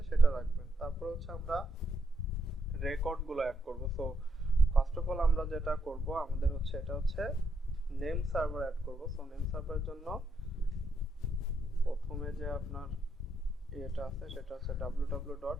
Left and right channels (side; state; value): both; normal; correlation 0.78